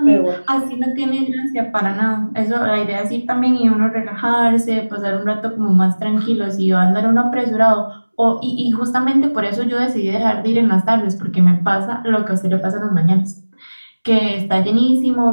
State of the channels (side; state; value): both; inverted; correlation -1.00